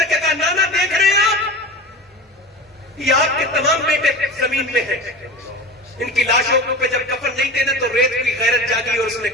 کے کہا نانا دیکھ رہے ہیں آپ, یہ آپ کے تمام بیٹے زمین میں ہیں. ان کی لاشوں پہ جب کفن نہیں دینا تو ریت کی غیرت جاگی اور اس نے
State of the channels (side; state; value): both; normal; correlation 0.32